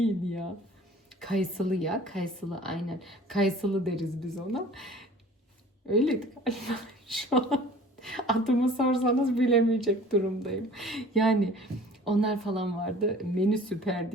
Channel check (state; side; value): normal; both; correlation 0.47